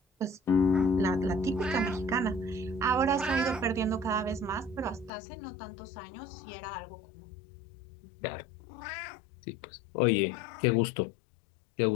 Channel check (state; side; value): drops out; right; at 5.1 s